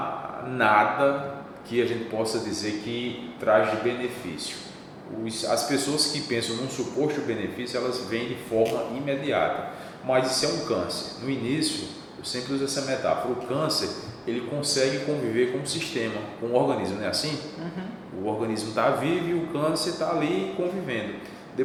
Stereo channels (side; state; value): both; identical; correlation 1.00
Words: nada que a gente possa dizer que traz de benefício. As pessoas que pensam num suposto benefício, elas vêm de forma imediata. Mas isso é um câncer. No início, eu sempre uso essa metáfora. O câncer, ele consegue conviver com o sistema, com o organismo, não é assim? O organismo está vivo e o câncer está ali convivendo.